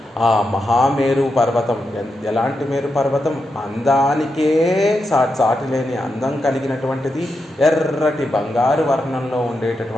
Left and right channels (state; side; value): normal; both; correlation 0.86